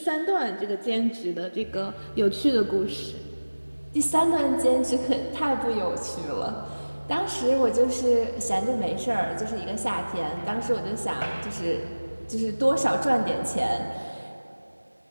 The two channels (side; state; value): both; inverted; correlation -1.00